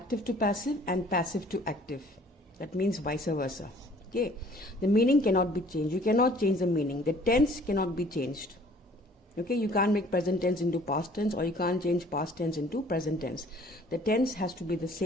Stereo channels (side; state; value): both; normal; correlation 0.54